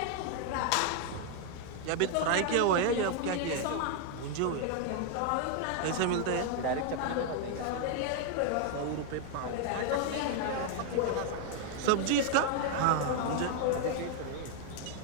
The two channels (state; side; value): different; both; correlation 0.00